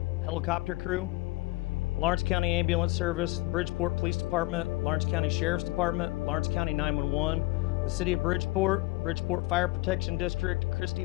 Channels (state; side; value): quieter; right; 20.4 dB